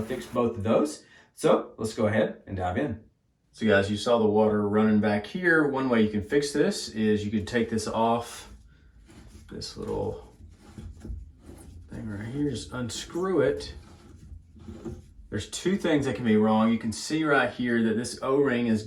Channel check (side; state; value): both; identical; correlation 1.00